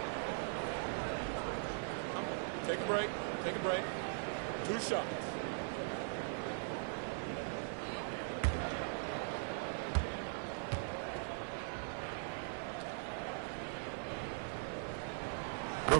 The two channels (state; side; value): silent; left; 51 dB below the other